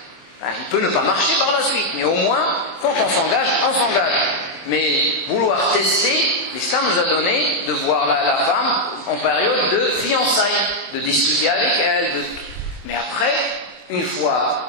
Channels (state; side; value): late; right; 24 ms